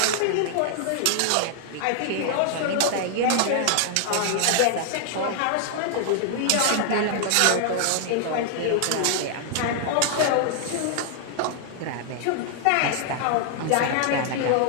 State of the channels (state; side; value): different; both; correlation 0.00